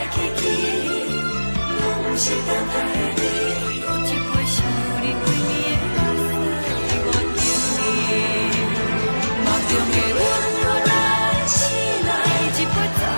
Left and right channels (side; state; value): both; inverted; correlation -1.00